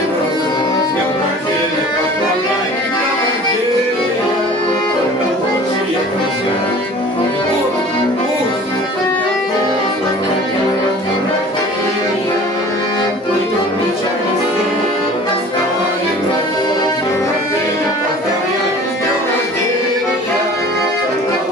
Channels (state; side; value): normal; both; correlation 0.45